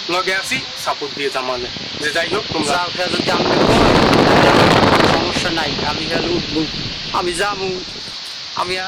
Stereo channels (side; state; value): both; identical; correlation 1.00